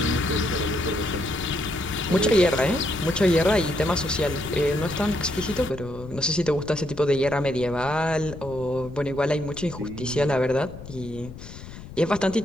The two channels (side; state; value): left; noise; rumble, 14 dB below the sound